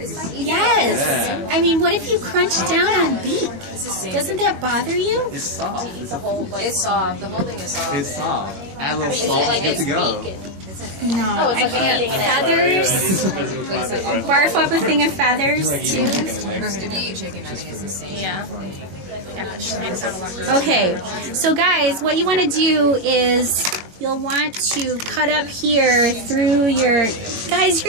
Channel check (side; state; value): left; late; 21 ms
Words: Yes. Yeah. I mean, what if you crunch down on beak? Doesn't that bother you? It's soft. The whole, like, it's soft. The whole thing is soft. It's soft. Add a little Is it salt, like good it's to go. bacon? No, Oh, it's I like can't. eating it. Feathers. Barf up a thing of feathers too. If you eat chicken, I think it's the same. Yeah. Okay, so guys, what you want to do is you'll want to cut up here through your... Guys,